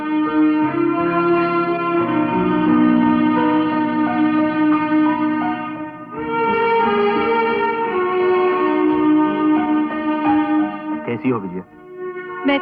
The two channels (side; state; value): both; identical; correlation 1.00